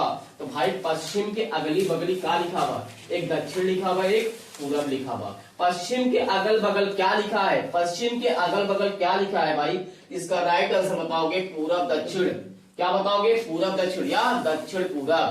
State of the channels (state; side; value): identical; both; correlation 1.00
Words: तो भाई पश्चिम के अगली बगली क्या लिखा हुआ, एक दक्षिण लिखा हुआ, एक पूरब लिखा हुआ। पश्चिम के अगल बगल क्या लिखा है, पश्चिम के अगल बगल क्या लिखा है भाई, इसका राइट आंसर बताओगे पूरब दक्षिण। क्या बताओगे, पूरब दक्षिण या दक्षिण